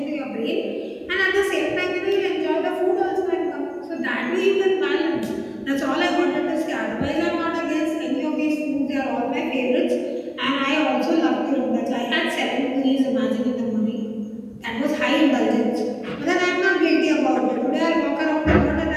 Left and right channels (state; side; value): identical; both; correlation 1.00